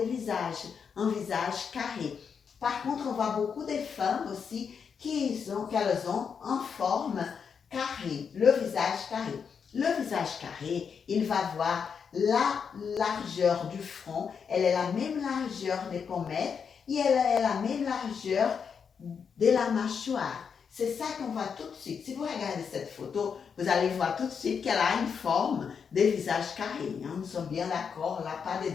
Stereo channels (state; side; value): quieter; right; 6.5 dB